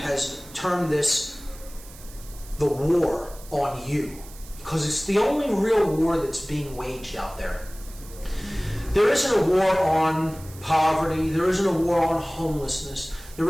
termed this the war on you, because it's the only real war that's being waged out there. There isn't a war on poverty, there isn't a war on homelessness, there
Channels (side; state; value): right; noise; hiss, 19 dB below the sound